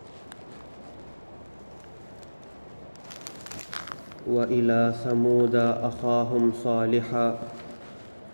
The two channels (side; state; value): both; inverted; correlation -1.00